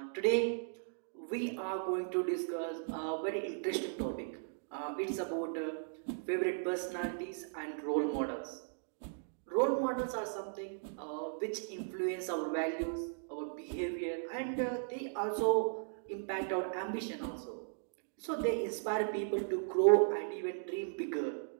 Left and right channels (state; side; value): silent; left; digital silence